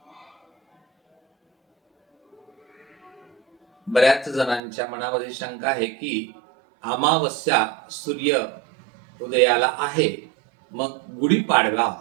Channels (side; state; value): left; drops out; at 4.6 s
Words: बऱ्याच जणांच्या मनामध्ये शंका आहे की अमावस्या सूर्य उदयाला आहे, मग गुढीपाडवा